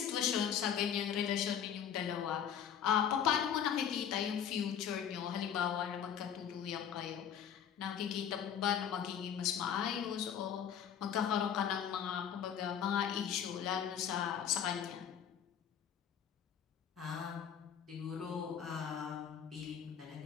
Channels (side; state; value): right; quieter; 8.7 dB